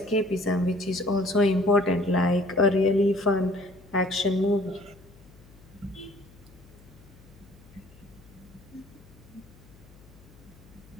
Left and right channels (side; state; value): left; noise; hum, 24 dB below the sound